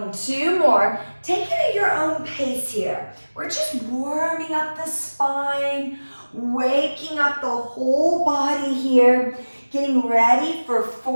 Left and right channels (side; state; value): both; inverted; correlation -1.00